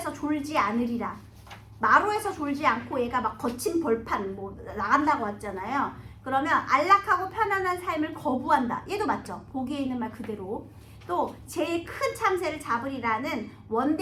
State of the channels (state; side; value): identical; both; correlation 1.00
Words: 졸지 않으리라. 마루에서 졸지 않고 얘가 막 거친 벌판 뭐 나간다고 했잖아요. 그러면 안락하고 편안한 삶을 거부한다. 얘도 맞죠? 보기에 있는 말 그대로. 또 제일 큰 참새를 잡으리라는